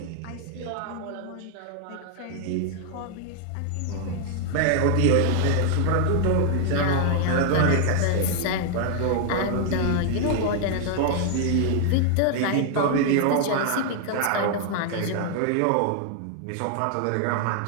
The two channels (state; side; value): different; both; correlation 0.00